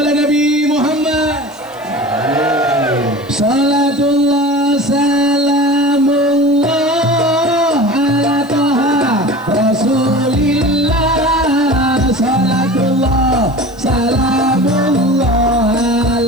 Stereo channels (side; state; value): right; noise; hiss, 28 dB below the sound